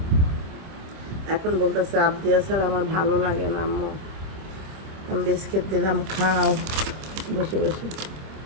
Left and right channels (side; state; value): left; late; 26 ms